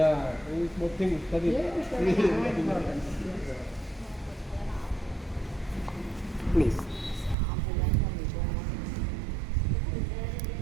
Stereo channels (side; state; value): left; drops out; at 7.4 s